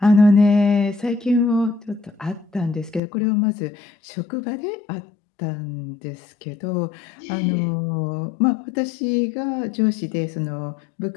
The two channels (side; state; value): right; drops out; at 3.0 s